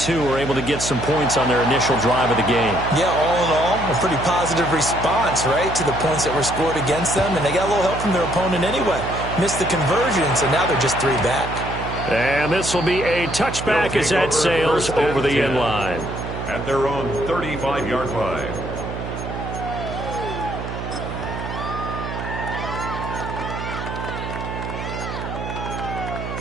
are able to get some points on their initial drive of the game. Yeah, all in all, a pretty positive response, right, to the points that were scored against them. And they got a little help from their opponent anyway. Missed the conversion, so now they're just 3 back. And this will be a touchback as that sails over the end line. At their own 35-yard line.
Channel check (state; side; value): noise; right; hum, 7 dB below the sound